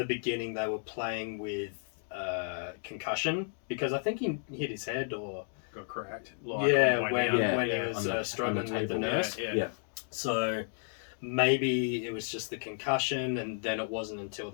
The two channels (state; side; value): silent; right; 56 dB below the other